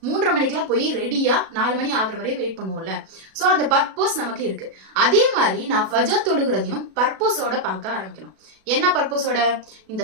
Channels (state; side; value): late; left; 37 ms